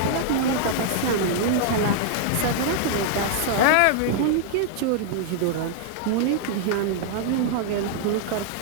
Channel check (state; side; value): different; both; correlation 0.00